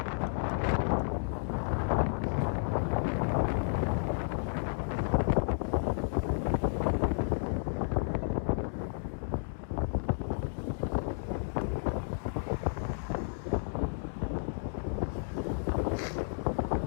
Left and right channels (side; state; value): right; silent; digital silence